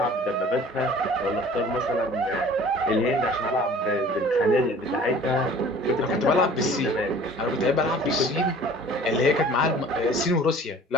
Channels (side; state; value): both; normal; correlation 0.47